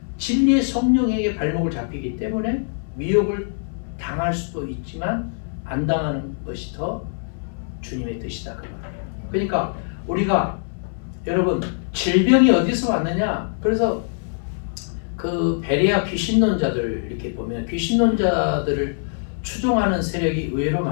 진리의 성령에게 발목을 잡히기 때문에 미혹을 당할 수도 있지만 안 당하는 것이 더 주님의 뜻이다 그 말이에요. 그러니까 우리가 여러분 질병이 어디서 왔느냐? 그래서 그 베레아 귀신론자들 이렇게 보면 귀신론자들을 추종하는 세력이 의외로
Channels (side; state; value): right; silent; 63 dB below the other